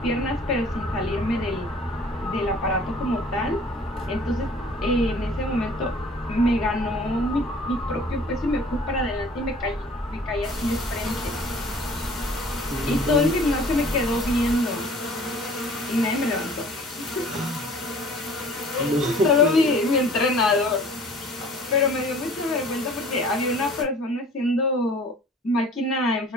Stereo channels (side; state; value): both; normal; correlation 0.50